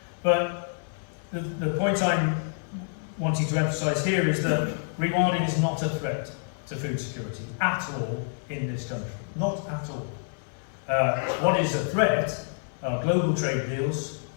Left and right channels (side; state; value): right; silent; digital silence